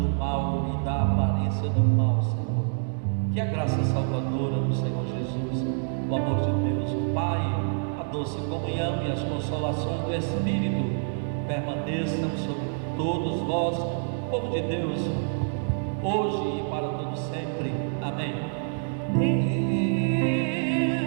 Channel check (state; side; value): silent; left; digital silence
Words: mal e da aparência do mal, Senhor. Que a graça salvadora do Senhor Jesus, o amor de Deus, o Pai, a doce comunhão e as consolações do Espírito permaneçam sobre todos vós, povo de Deus, hoje e para todo sempre. Amém.